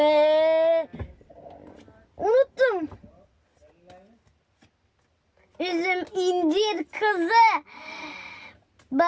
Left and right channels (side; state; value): both; identical; correlation 1.00